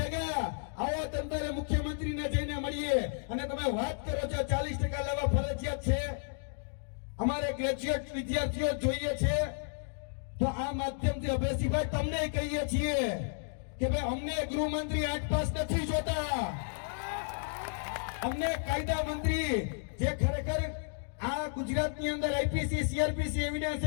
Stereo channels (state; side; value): silent; right; digital silence